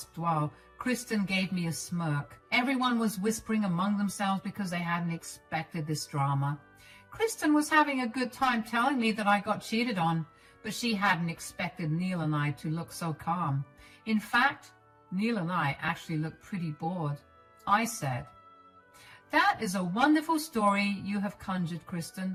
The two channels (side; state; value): both; identical; correlation 1.00